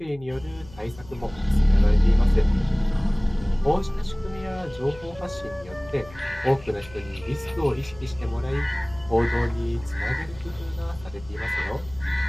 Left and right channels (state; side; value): noise; left; hum, 20 dB below the sound